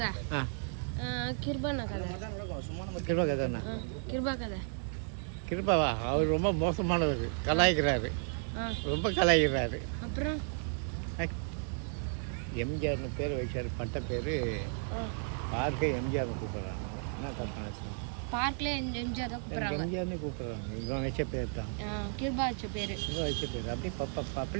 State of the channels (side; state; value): left; silent; 55 dB below the other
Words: கிருபா கதைண்ணா, கிருபா கதை. கிருபாவா, அவர் ரொம்ப மோசமானவர், கலாய்க்கிறாரு, ரொம்ப கலாய்க்கிறாரு. அப்புறம் எம்ஜிஆர்னு பேர் வச்சார், பட்ட பேர் பார்க்க எம்ஜிஆர்னு கூப்பிட்றாங்க. என்ன சொல்கிறாங்க, பார்க்கில் எம்ஜிஆர் தான் கூப்பிட்றாங்க. எம்ஜிஆர்னு கூப்பிட்றாங்க. இவன் வச்ச பேர் தான், கிருபா வச்ச பேர். இவன் வச்ச பேர் அப்படி